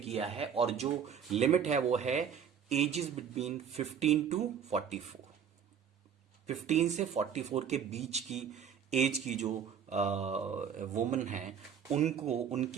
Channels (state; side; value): quieter; left; 7.8 dB